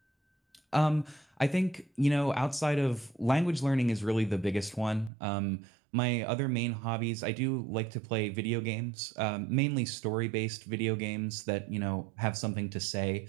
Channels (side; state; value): left; drops out; at 5.1 s